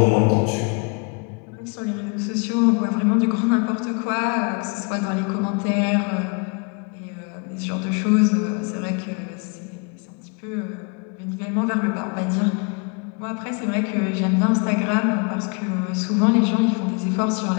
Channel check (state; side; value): quieter; right; 33.8 dB